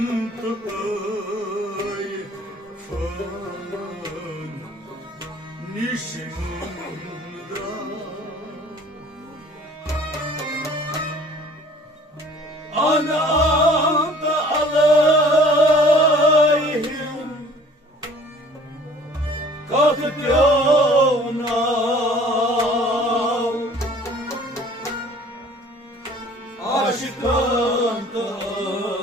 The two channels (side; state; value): both; normal; correlation 0.51